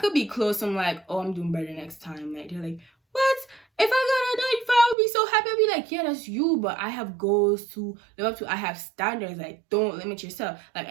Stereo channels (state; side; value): drops out; left; at 5.0 s